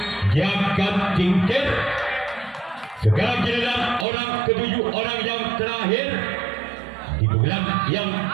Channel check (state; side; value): drops out; left; at 4.0 s